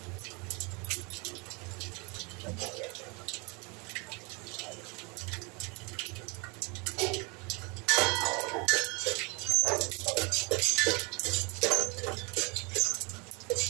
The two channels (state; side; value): quieter; left; 30.0 dB